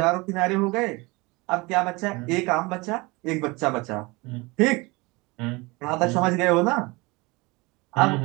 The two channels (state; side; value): quieter; left; 24.6 dB